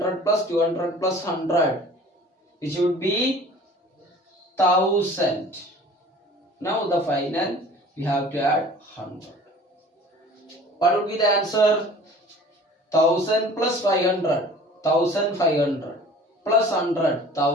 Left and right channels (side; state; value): both; normal; correlation 0.46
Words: plus 200 plus 100. Which would be 1000. Now the final we have to add 100. What would be the answer? 1000 plus 500. 1500 plus 100.